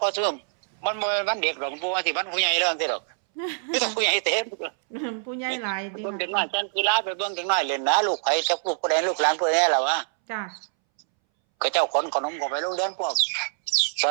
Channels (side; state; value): left; silent; 62 dB below the other